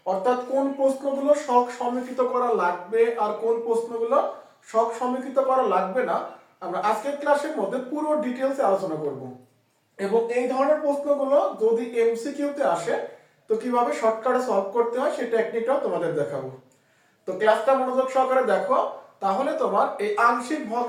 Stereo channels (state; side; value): identical; both; correlation 1.00